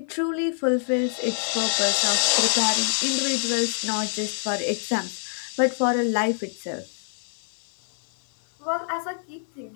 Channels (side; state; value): right; silent; digital silence